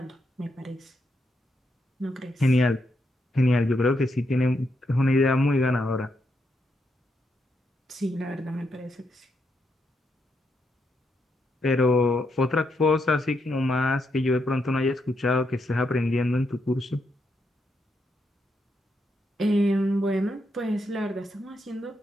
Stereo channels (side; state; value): both; normal; correlation 0.80